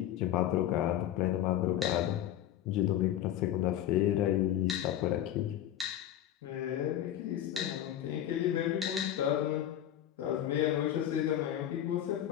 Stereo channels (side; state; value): right; quieter; 11.7 dB